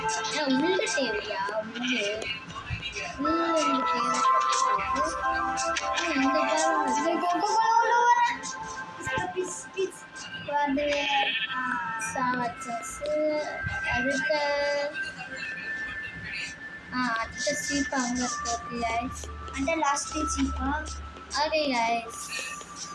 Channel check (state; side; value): identical; both; correlation 1.00